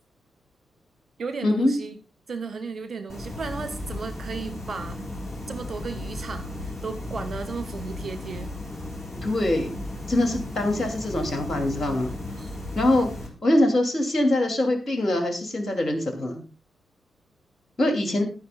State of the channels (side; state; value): both; normal; correlation 0.89